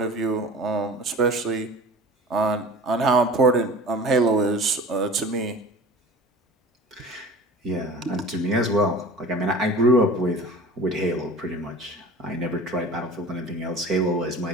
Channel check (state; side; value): normal; both; correlation 0.40